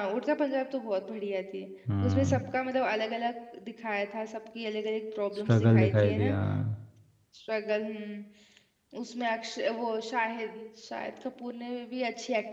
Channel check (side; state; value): both; identical; correlation 1.00